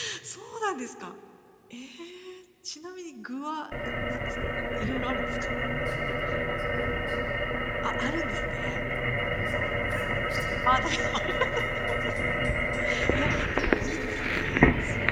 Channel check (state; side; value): identical; both; correlation 1.00